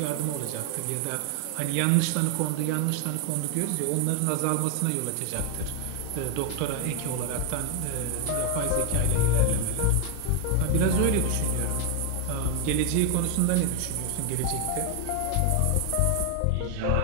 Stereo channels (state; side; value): different; both; correlation 0.01